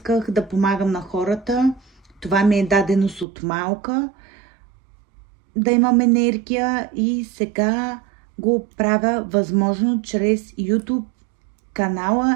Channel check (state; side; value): drops out; left; at 3.2 s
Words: да помагам на хората. Това ми е даденост от малка. Да имам енергия и сега го правя възможно чрез YouTube